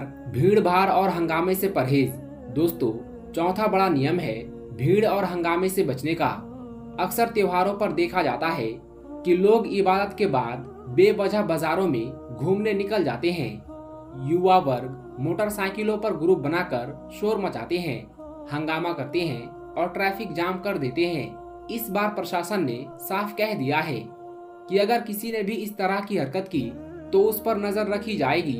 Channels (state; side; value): identical; both; correlation 1.00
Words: भीड़ भाड़ और हंगामे से परहेज। दोस्तों, चौथा बड़ा नियम है भीड़ और हंगामे से बचने का। अक्सर त्योहारों पर देखा जाता है कि लोग इबादत के बाद बेवजह बाजारों में घूमने निकल जाते हैं। युवा वर्ग मोटरसाइकिलों पर ग्रुप बनाकर शोर मचाते हैं, हंगामा करते हैं और ट्रैफिक जाम कर देते हैं। इस बार प्रशासन ने साफ कह दिया है कि अगर किसी ने भी इस तरह की हरकत की तो उस पर नजर रखी